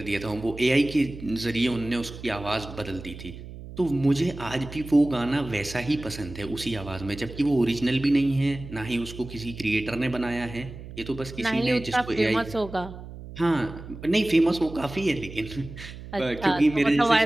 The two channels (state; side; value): noise; right; hum, 13 dB below the sound